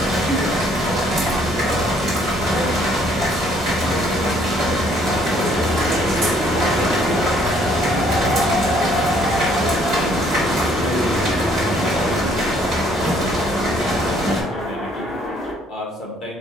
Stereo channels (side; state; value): both; normal; correlation 0.64